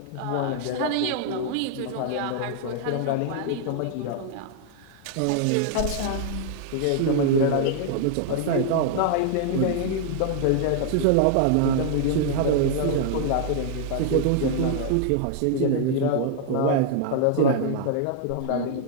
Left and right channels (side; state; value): both; different; correlation 0.00